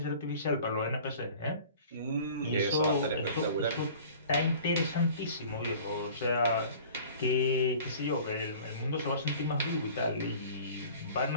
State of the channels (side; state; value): both; inverted; correlation -0.46